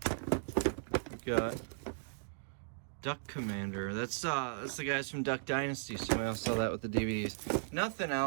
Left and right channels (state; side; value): silent; left; digital silence